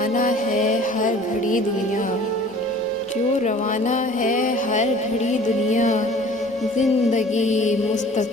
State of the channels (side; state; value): both; normal; correlation 0.48